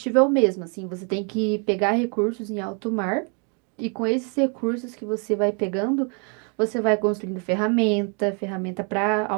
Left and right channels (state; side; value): quieter; left; 37.7 dB